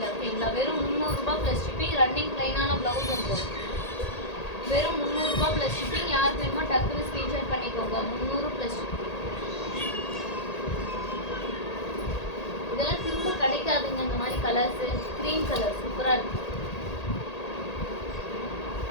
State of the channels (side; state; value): right; late; 1.8 ms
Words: ஓகேங்களா. வெறும் 300 ரூபாய் ப்ளஸ் ஷிப்பிங். ரன்னிங் ப்ளைனான ப்ளவுஸ் வந்துடும். வெறும் 300 ரூபாய் ப்ளஸ் ஷிப்பிங். யாருக்கு வேணுமோ டக்குன்னு ஸ்க்ரீன்ஷாட் பண்ணிக்கோங்க. 300 ப்ளஸ் ஷிப்பிங். இதெல்லாம் திரும்ப கிடைக்காதுங்க இந்த மாதிரி கலர்ஸு. க்ரீன் கலர் சூப்பராக இருக்குது.